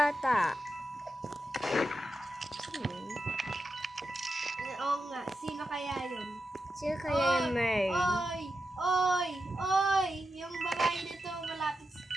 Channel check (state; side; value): normal; both; correlation 0.89